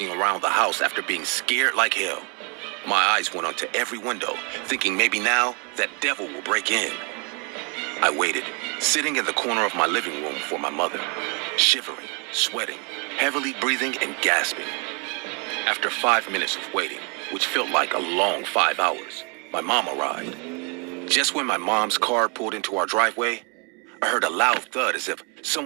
around the house after being scared like hell. My eyes went onto every window, thinking maybe now that devil will break in. I waited, sitting in the corner of my living room for my mother, shivering, sweating, heavily breathing and gasping. After 5 minutes of waiting, which felt like a long 5 hours, my mom arrived. Just when my mom's car pulled into our driveway, I heard a loud thud as if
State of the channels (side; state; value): left; quieter; 33.2 dB